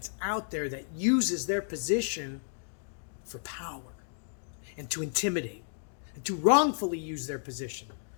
out there that uses their position for power and to intimidate and to wrongfully use their position.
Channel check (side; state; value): right; silent; digital silence